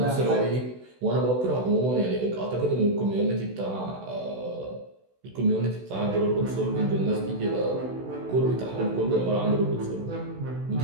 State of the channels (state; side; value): late; left; 16 ms